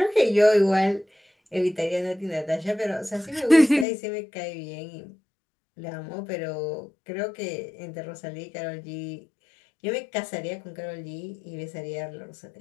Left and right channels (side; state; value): right; drops out; at 3.9 s